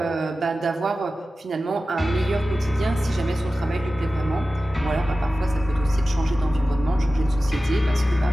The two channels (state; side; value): normal; both; correlation 0.95